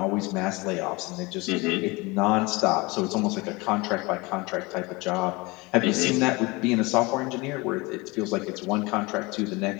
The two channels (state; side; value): quieter; right; 24.8 dB